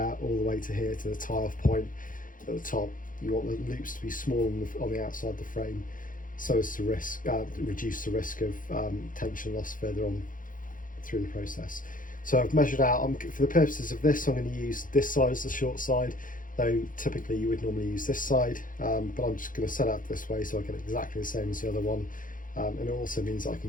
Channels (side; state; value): right; late; 0.39 ms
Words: all the way to here to the tie-off point at the top. You want the loops to be small on the outside of the frame, so as to reduce the risk of tension loss further on through the process. So I've measured out, for the purposes of this, I'm going to use this side as the short side, though typically you would normally use this side, but I'm just going to set out this way so I get exactly the same as the other one. And it also means I